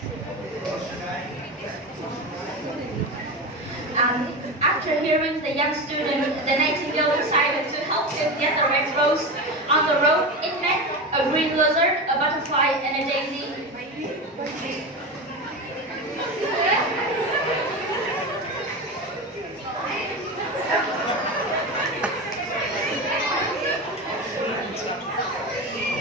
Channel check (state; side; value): normal; both; correlation 0.22